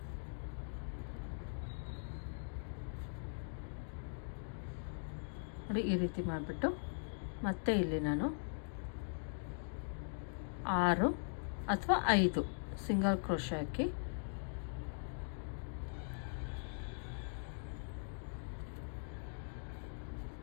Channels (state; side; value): silent; right; digital silence